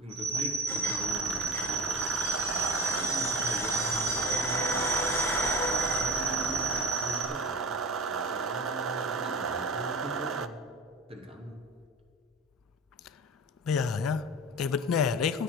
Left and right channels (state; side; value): normal; both; correlation 0.35